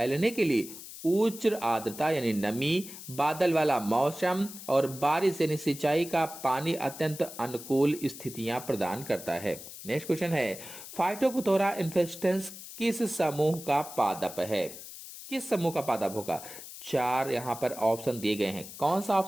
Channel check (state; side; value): noise; left; hiss, 13 dB below the sound